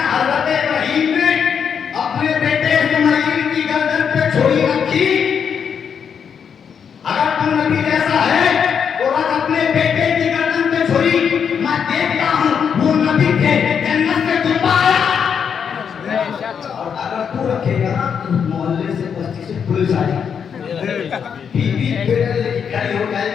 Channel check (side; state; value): right; quieter; 7.2 dB